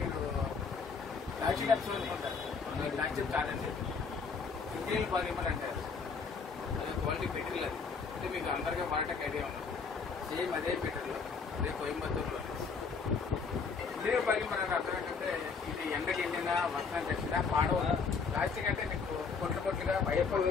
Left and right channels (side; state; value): right; quieter; 5.2 dB